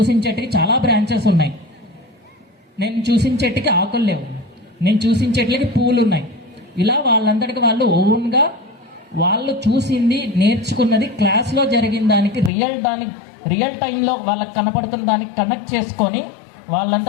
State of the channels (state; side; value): drops out; right; at 12.5 s